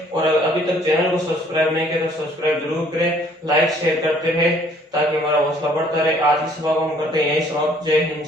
और अभी तक चैनल को सब्सक्राइब नहीं किया तो सब्सक्राइब जरूर करें, लाइक शेयर करते रहे ताकि हमारा हौसला बढ़ता रहे। आज की सभा को हम करते हैं यही समाप्त। जय हिंद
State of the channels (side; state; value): both; normal; correlation 0.60